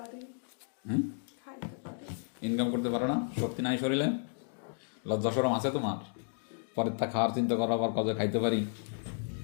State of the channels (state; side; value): silent; right; digital silence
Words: হুম, খাইতে পারি। ইনকাম করতে পারো না? শক্তি নাই শরীরে? লজ্জা শরম আছে তোমার? পরের তা খাওয়ার চিন্তা করো, আবার কাজে খাইতে পারি।